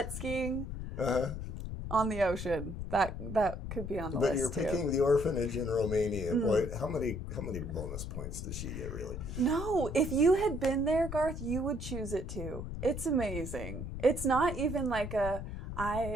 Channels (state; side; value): noise; left; rumble, 7 dB below the sound